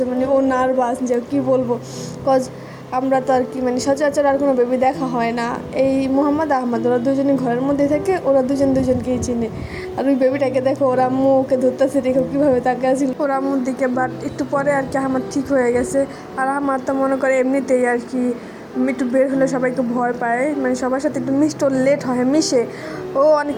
মানে ও নার্ভাস, যে কী বলবো, কজ আমরা তো আর কি মানে সচরাচর আর কোনো বেবি দেখা হয় না। এই মোহাম্মদ আহমদ ওরা দুজনই ঘরের মধ্যে থাকে, ওরা দুজনকেই চিনে। আর ওই বেবিটাকে দেখো, ওর আম্মু ওকে ধরতেছে, দেখো কীভাবে তাকে আসছিল ওর আম্মুর দিকে। বাট একটু পরে আর কি আহমদ ঠিক হয়ে গেছে। আর আহমদ তো মনে করে এমনিতেই আর কি একটু বের হলে সবাইকে ভয় পায়, মানে সবার সাথে একটু মিশতে ওর লেট হয়, মিশে ও অনেক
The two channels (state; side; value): identical; both; correlation 1.00